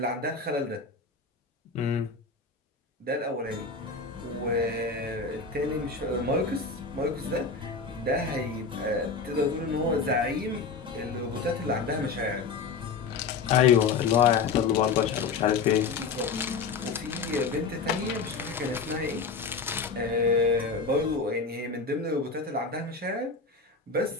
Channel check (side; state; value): right; quieter; 4.8 dB